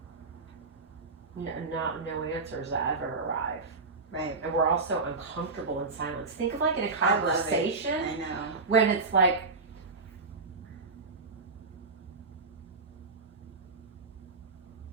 no answers ever arrive. Right. And we're all so uncomfortable in silence. Think of like in a I love it. conversation I know. when it's like,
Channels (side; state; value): left; quieter; 3.9 dB